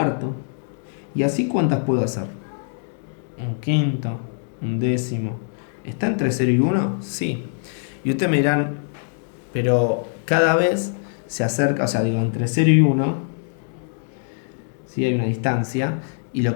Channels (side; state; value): right; silent; digital silence